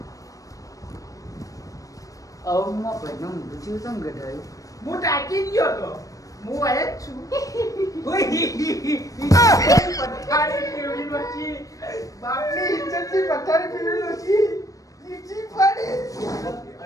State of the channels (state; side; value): late; right; 0.16 ms